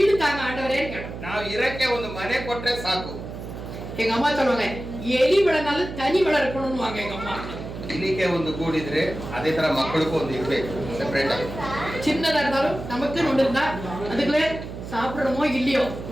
தாங்க ஆண்டவரே கேட்டோம். ನಾವು ಇರಕ್ಕೆ ಒಂದು ಮನೆ ಕೊಟ್ರೆ ಸಾಕು. எங்க அம்மா சொல்லுவாங்க, எலி விளனாலும் தனி விள இருக்கணும்னு வாங்க எங்க அம்மா. ಇಲ್ಲಿಗೆ ಒಂದು ಕೂಡಿದ್ರೆ ಅದೇ ತರ ಮಕ್ಕಳಿಗೂ ಒಂದು ಇರ್ಬೇಕು, ಸೆಪರೇಟ್ ಆಗಿ. சின்னதா இருந்தாலும் நமக்கு ஒன்று இருந்தா அதுக்குள்ளே சாப்பிடணுமோ இல்லையೋ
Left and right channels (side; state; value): right; noise; hum, 10 dB below the sound